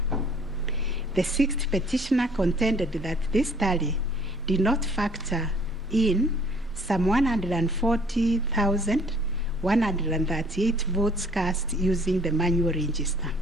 The sixth petitioner contended that this tally did not factor in some 140,138 votes cast using the manual register.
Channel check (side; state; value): both; normal; correlation 0.57